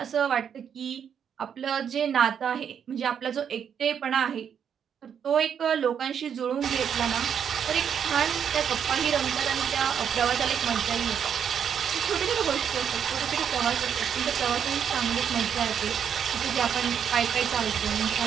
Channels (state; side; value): quieter; left; 8.0 dB